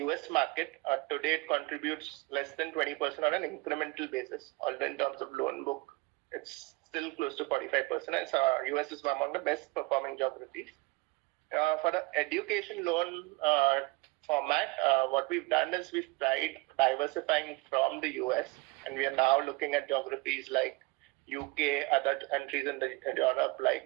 US market, today it contributes less than 20% on an incremental basis, although in terms of loan book, it's still close to 45%. And so US is among the best performing geographies. For the education loan format, what we've done is we've tried diversifying from the US, and we are now looking at geographies like UK, other countries in Europe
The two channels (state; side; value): quieter; left; 23.7 dB